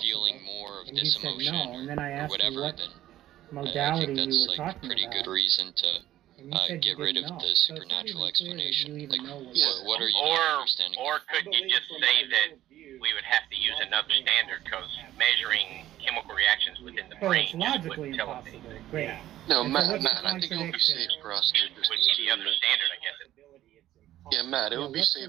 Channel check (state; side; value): quieter; left; 13.5 dB